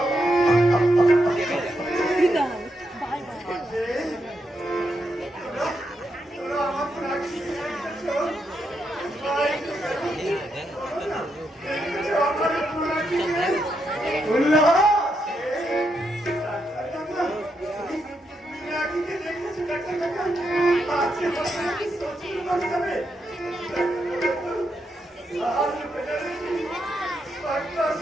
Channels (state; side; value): normal; both; correlation 0.82